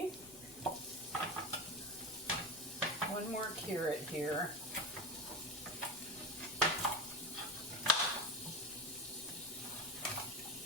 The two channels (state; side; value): noise; left; rumble, 23 dB below the sound